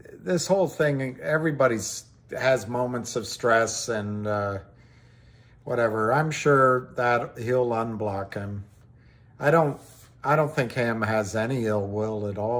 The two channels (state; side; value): identical; both; correlation 1.00